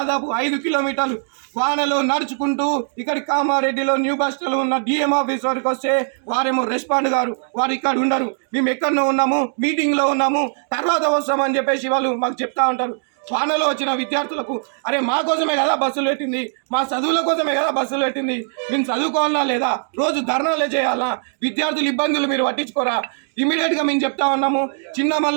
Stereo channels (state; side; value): silent; left; digital silence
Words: 5 కిలోమీటర్లు వానలో నడుచుకుంటూ ఇక్కడి కామారెడ్డిలో న్యూ బస్ స్టాండ్లో ఉన్న డిఎం ఆఫీస్ వరకు వస్తే వారేమో రెస్పాండ్ గారు, వారు ఇక్కడ ఉండరు, మేము ఎక్కడో ఉన్నాము, మీటింగ్లో ఉన్నాము, తర్వాత వస్తామని చెప్పేసి వాళ్ళు మాకు చెప్తా ఉంటారు. వానలో వచ్చిన విద్యార్థులకు అరే మా కోసమే కదా బస్సులు పెట్టింది, మా చదువుల కోసమే కదా బస్సులు పెట్టింది, మేము చదువుకోవాలా లేదా, రోజు ధర్నాలే చేయాలా, విద్యార్థుల ఇబ్బందులు మీరు పట్టించుకోరా, ఇమీడియట్గా మేము చెప్తా ఉన్నాము. చిన్న